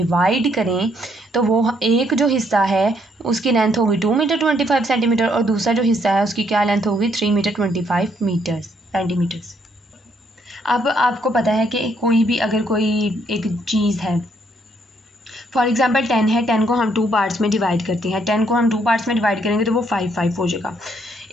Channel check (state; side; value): normal; both; correlation 0.71